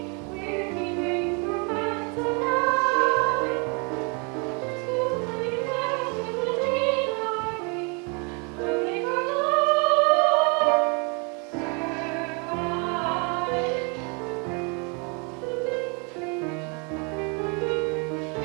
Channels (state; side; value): quieter; left; 34.2 dB